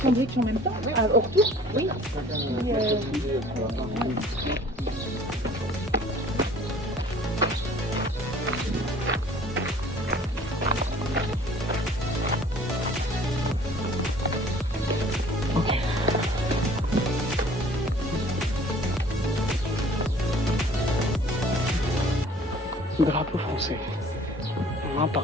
sandwich en même temps. Au retour, oui. Ok. Drapeau français. Un par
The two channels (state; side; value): normal; both; correlation 0.51